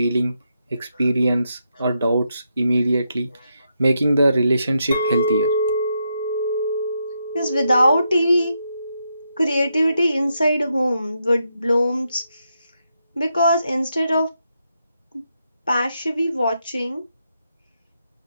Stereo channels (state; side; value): inverted; both; correlation -0.82